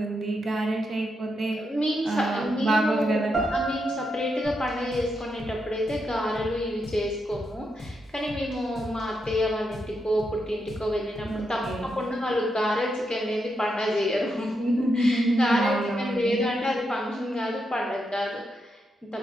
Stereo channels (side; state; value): both; normal; correlation 0.83